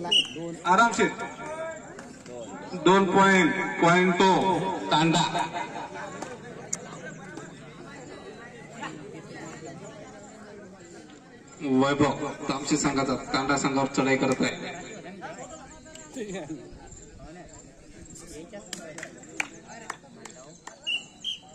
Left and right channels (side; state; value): both; identical; correlation 1.00